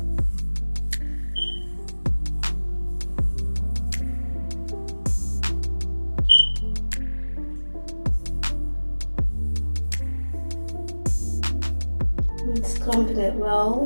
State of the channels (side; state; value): both; inverted; correlation -1.00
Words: It's clumping it